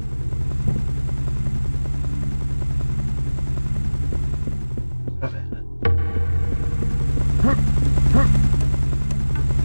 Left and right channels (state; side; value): inverted; both; correlation -1.00